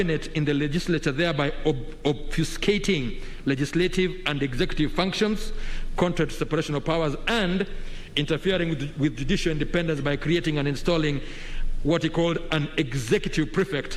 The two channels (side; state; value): both; identical; correlation 1.00